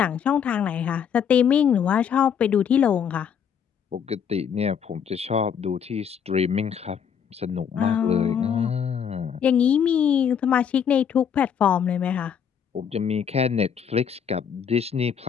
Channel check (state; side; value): quieter; right; 7.7 dB